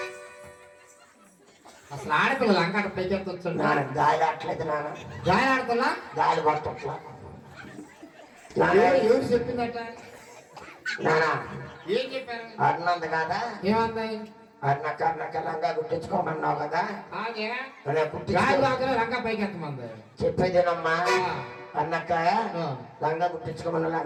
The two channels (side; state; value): both; identical; correlation 1.00